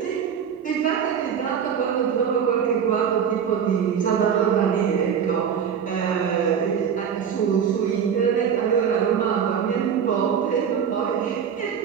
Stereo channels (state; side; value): quieter; left; 7.7 dB